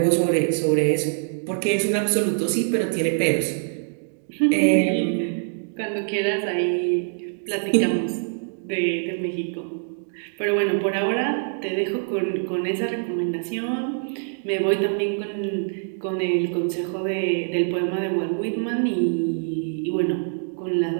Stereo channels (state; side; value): silent; left; digital silence